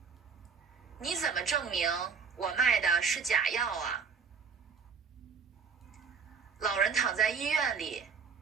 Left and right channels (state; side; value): quieter; left; 5.8 dB